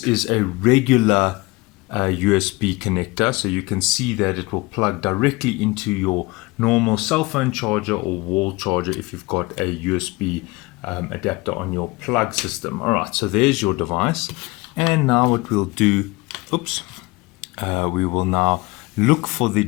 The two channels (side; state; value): right; quieter; 23.3 dB